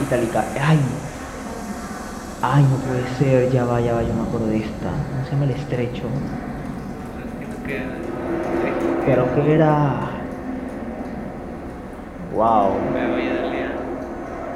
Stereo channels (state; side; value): identical; both; correlation 1.00